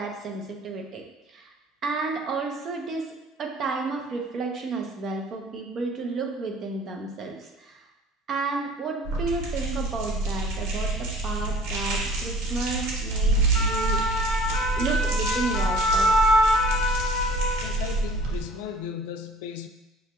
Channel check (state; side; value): normal; both; correlation 0.49